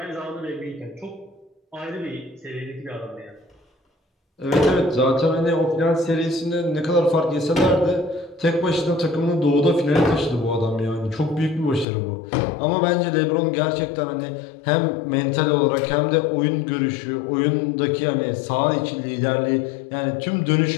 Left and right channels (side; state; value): right; drops out; at 11.9 s